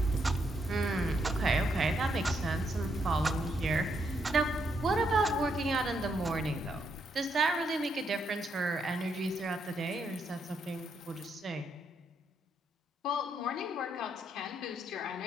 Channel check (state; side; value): normal; both; correlation 0.77